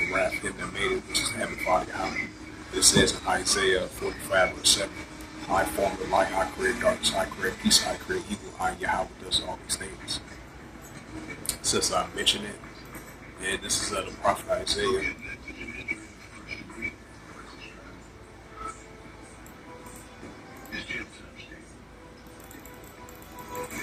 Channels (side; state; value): both; identical; correlation 1.00